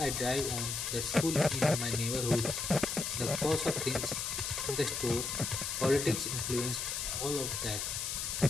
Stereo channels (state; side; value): noise; left; hiss, 2 dB below the sound